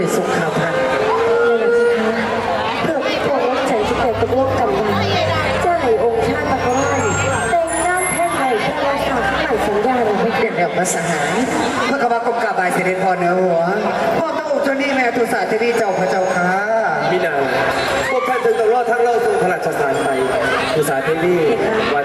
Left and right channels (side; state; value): both; identical; correlation 1.00